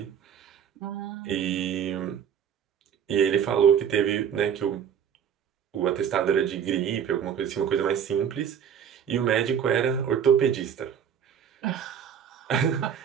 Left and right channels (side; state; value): left; quieter; 8.3 dB